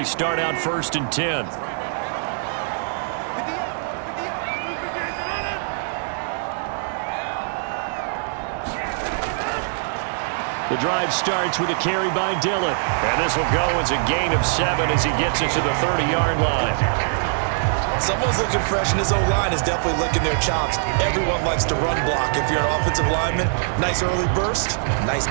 start out 1st and 10. The drive starts with a carry by Dillon. And this will go as a gain of 7 as he gets it to the 30-yard line. Someone's looking fresh, and his O-line is definitely licking their chops. Everyone likes to run block. If you're an offensive lineman, nice early burst, nice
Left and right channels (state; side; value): silent; left; digital silence